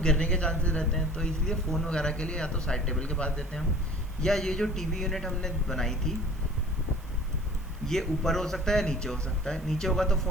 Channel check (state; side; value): noise; right; hiss, 26 dB below the sound